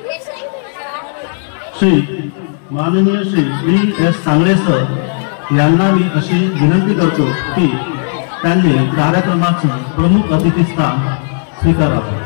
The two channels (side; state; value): right; silent; 59 dB below the other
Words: श्री माननीय श्री V.S. सांगळे सर यांना मी अशी विनंती करतो की त्यांनी कार्यक्रमाचे प्रमुख अतिथी स्थान स्वीकारावे।